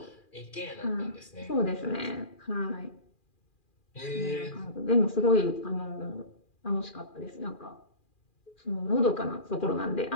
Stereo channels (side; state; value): right; late; 2.4 ms